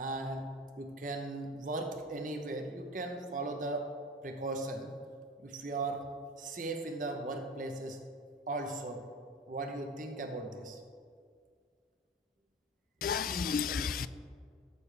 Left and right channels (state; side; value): normal; both; correlation 0.33